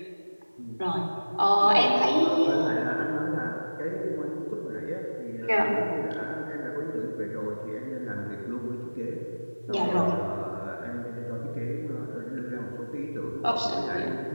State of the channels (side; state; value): both; inverted; correlation -1.00